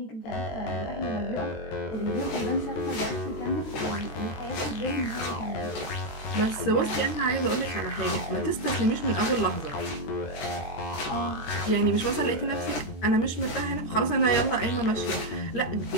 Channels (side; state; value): right; late; 13 ms